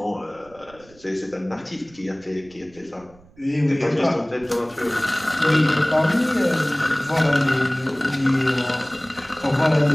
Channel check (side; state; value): right; noise; rumble, 27 dB below the sound